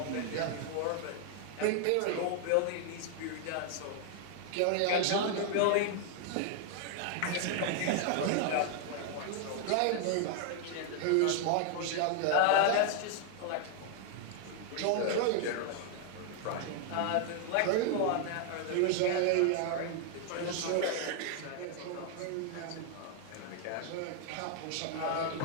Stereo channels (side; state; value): both; different; correlation 0.00